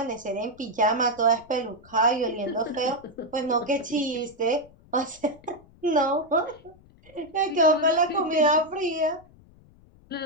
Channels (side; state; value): left; noise; rumble, 26 dB below the sound